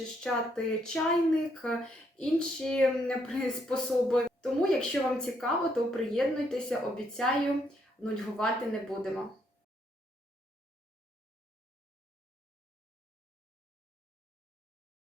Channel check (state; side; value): normal; both; correlation 0.73